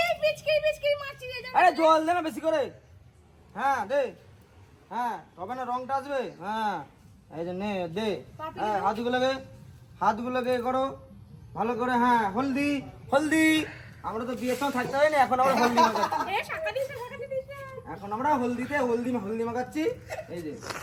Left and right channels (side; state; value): both; identical; correlation 1.00